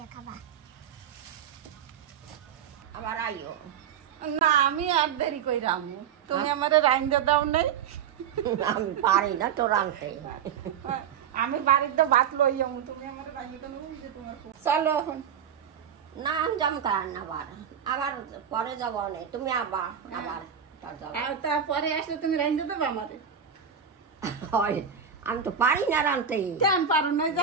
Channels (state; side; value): quieter; left; 7.9 dB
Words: খাবা। আবার আইও। না আমি আর দেরি কই রামু তুমি আমারে রাইন্দা দাও নাই আমি পারি না তো রাঁধতে। আমি বাড়িতে ভাত লই যাবো তুমি আমারে রাইন্দা দাও যে তোমার চলো এখন না আমি যাম কার না আবার পরে যাব না তুমি আবার তারপরে আসলে তুমি রাইন্দা দেবো আমারে হয় আমি তো পারি না রাঁধতে। কেন পারো না